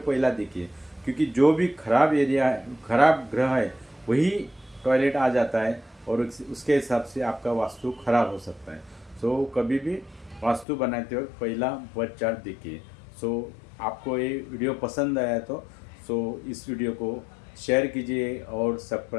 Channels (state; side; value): drops out; right; at 10.7 s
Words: देखिए। क्योंकि जो भी खराब एरिया है, खराब ग्रह है, वही टॉयलेट आ जाता है और उसके हिसाब से आपका वास्तु खराब हो सकता है। सो कभी भी वास्तु बनाते वक्त पहला बर्थ चार्ट देखिए। सो आपको ये वीडियो पसंद आया तो इस वीडियो को शेयर कीजिए और